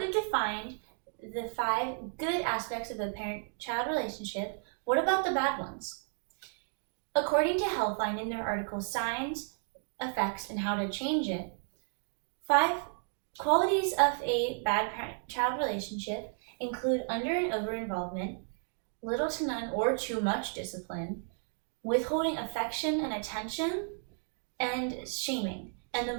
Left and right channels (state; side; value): silent; left; 56 dB below the other